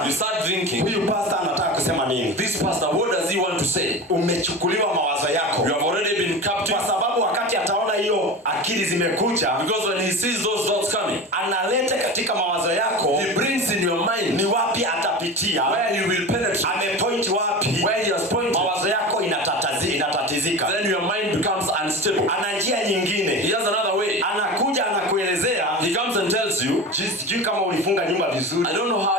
you start thinking, huyu pastor anataka kusema nini? This pastor, what does he want to say? Umechukuliwa mawazo yako. You have already been captive. Kwa sababu wakati ataona hiyo akili zimekuja, because when he sees those thoughts coming, analeta katika mawazo yako, he brings in your mind, ni wapi atapitia, where he will penetrate, amepoint wapi, where he has pointed, mawazo yako inatatizika. Then your mind becomes unstable. Ana njia nyingine. He has another way. Anakuja anakuelezea, he comes and tells you, sijui kama ulifunga nyumba vizuri. I don't know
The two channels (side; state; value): both; normal; correlation 0.29